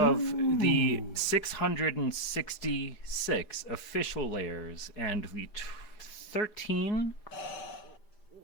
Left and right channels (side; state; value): right; late; 4.7 ms